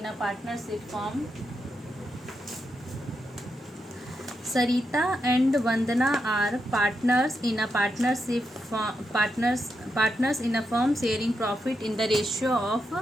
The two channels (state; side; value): normal; both; correlation 0.84